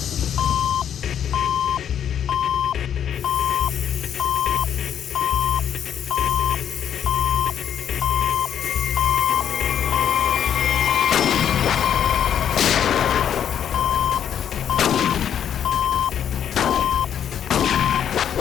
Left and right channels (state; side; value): quieter; right; 9.1 dB